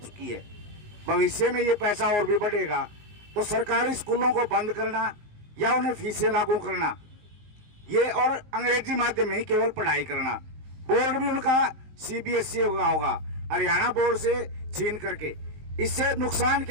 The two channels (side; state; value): left; late; 19 ms